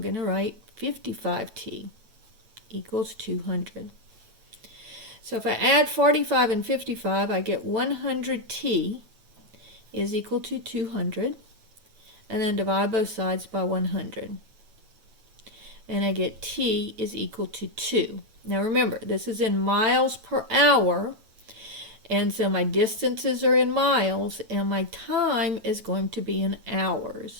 to write 55T equals 200. So if I add 45 and 55, I get 100T is equal to 200. And then divide both sides by 100. And I get T is equal to 2. Now remember, this is in miles per hour. And so my distances are in miles. And my time is going to be in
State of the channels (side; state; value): left; late; 9.1 ms